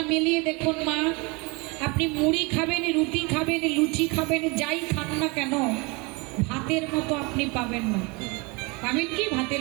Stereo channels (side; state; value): left; quieter; 28.0 dB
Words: মিলিয়ে দেখুন মা, আপনি মুড়ি খাবেন, রুটি খাবেন, লুচি খাবেন, যাই খান না কেন, ভাতের মতো আপনি পাবেন না। পাবেন কি ভাতের